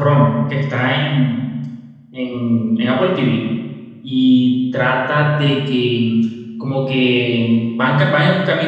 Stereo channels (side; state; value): both; identical; correlation 1.00